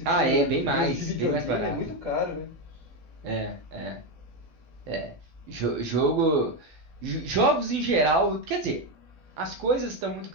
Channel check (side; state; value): left; late; 12 ms